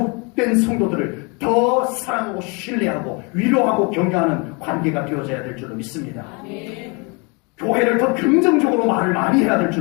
성도들을 더 사랑하고 신뢰하고 위로하고 격려하는 관계가 되어져야 될 줄로 믿습니다. 교회를 더 긍정적으로 말을 많이 해야 될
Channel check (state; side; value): quieter; right; 31.2 dB